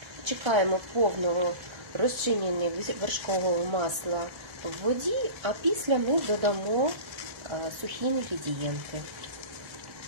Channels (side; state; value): left; late; 1.3 ms